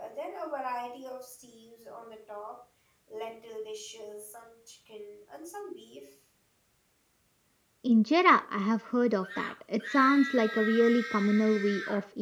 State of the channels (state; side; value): identical; both; correlation 1.00